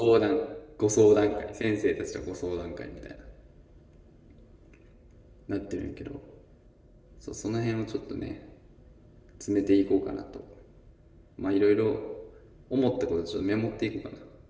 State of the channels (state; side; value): identical; both; correlation 1.00